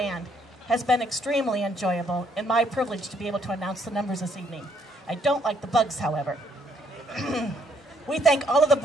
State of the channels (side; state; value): both; normal; correlation 0.69